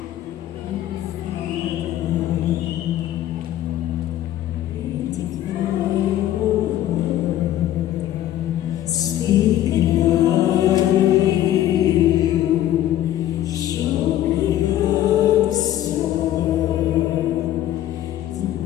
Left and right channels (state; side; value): quieter; right; 12.8 dB